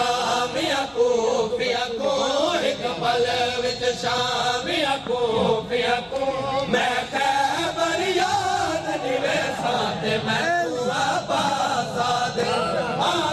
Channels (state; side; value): identical; both; correlation 1.00